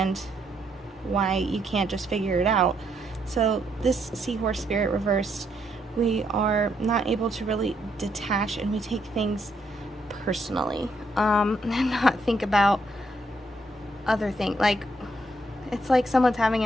why you can't just figure it out. So this seahorse spirit reversed, we are not able to really detach, and we take things personally and not think about other things. Like, it's like someone's having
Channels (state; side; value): normal; both; correlation 0.74